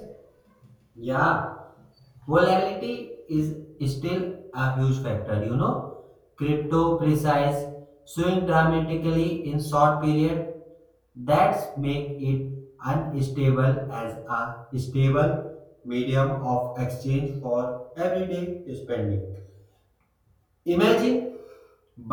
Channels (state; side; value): identical; both; correlation 1.00